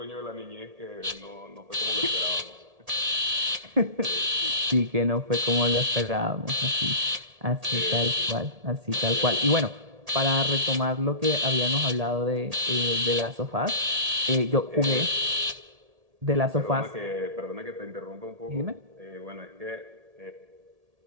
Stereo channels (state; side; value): late; left; 1.8 ms